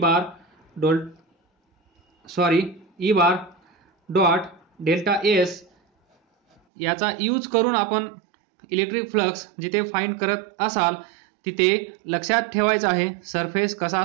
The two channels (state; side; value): drops out; left; at 6.6 s